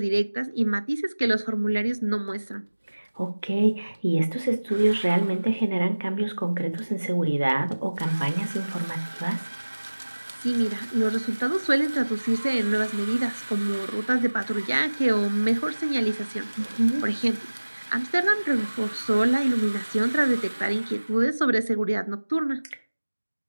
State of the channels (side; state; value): both; inverted; correlation -1.00